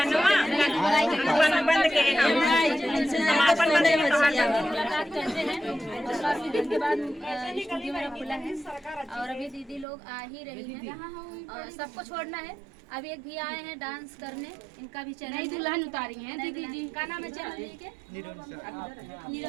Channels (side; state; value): left; drops out; at 9.9 s